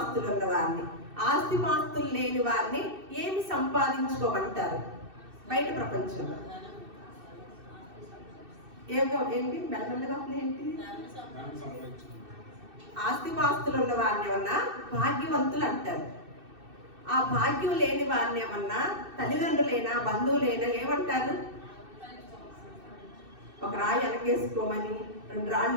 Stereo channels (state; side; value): late; left; 2.6 ms